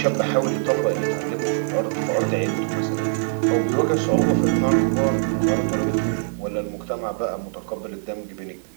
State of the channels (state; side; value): silent; left; digital silence